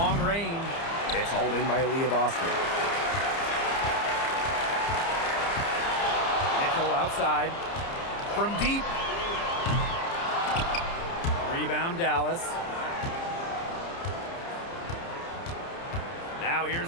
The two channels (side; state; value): right; late; 30 ms